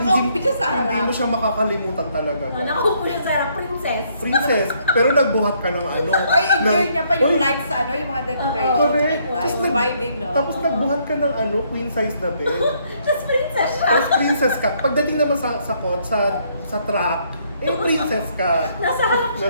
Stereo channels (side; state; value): both; inverted; correlation -0.69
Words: siya sa harap. hindi mo siya makakalimutan talaga. Nakaupo siya sa princess. Princess, pero nagbuhat ka ng ano. Oy, enjoy ng- niya pa yung Oy, lights sa ano, yung mga decorations. Correct. Ay, vibing, no? Tapos nagbuhat ka ng ano, queen size na bed. Tapos princess siya. Tapos princess ka. Pagdating naman sa truck, princess ka. Nasa harap siya.